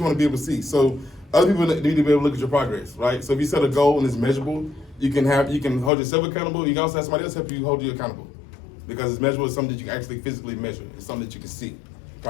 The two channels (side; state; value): right; drops out; at 5.9 s